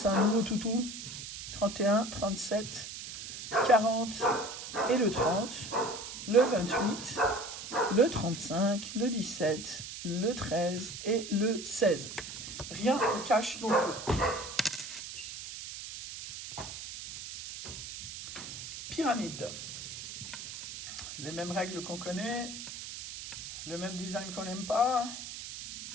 un nouveau toutou, 31, 37, 40 et le 30, le 28, le 35, le 17, le 13 et le 16. Rien en cash non plus. Pyramide. Les mêmes règles qu'on connaît, le même design qu'on n'aime pas.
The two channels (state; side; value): noise; right; hiss, 9 dB below the sound